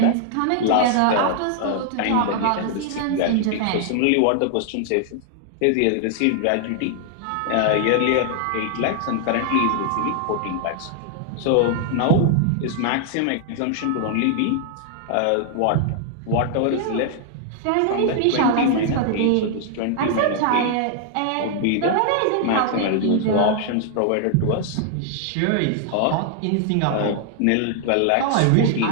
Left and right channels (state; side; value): different; both; correlation 0.00